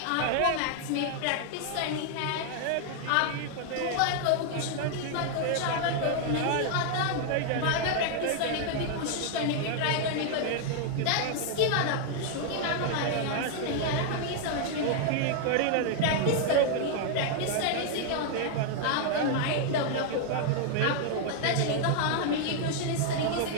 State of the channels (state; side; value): different; both; correlation 0.00